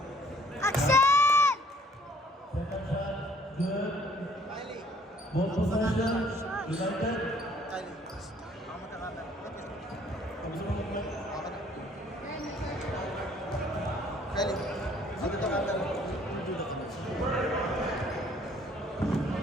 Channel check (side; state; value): both; normal; correlation 0.59